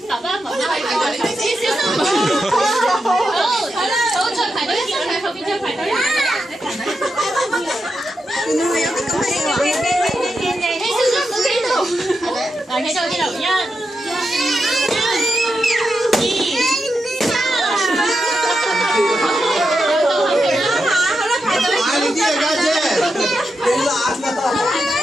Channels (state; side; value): normal; both; correlation 0.87